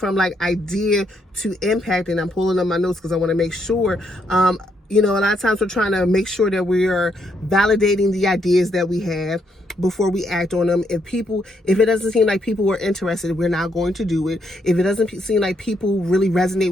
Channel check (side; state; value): both; normal; correlation 0.75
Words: like idea to impact, and I'm pulling up my notes because I want to make sure, a lot of times we're trying to make sure that we are validating the ideas that we have before we act on them. If it doesn't seem like people are interested, we're not going to do it. If it doesn't seem like people really resonate